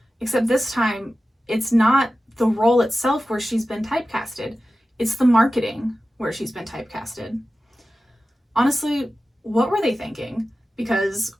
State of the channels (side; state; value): both; normal; correlation 0.94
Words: except this time it's not the role itself where she's been typecasted, it's the marketing where she's been typecasted. Honestly, what were they thinking? Because